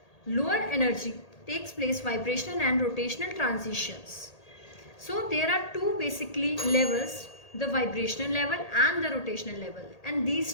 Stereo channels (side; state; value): right; late; 1.8 ms